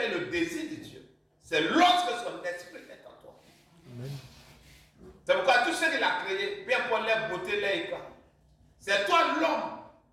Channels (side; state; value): both; identical; correlation 1.00